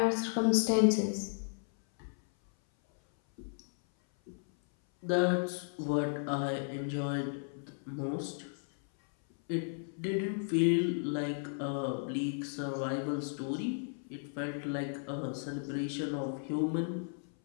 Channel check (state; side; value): silent; right; 55 dB below the other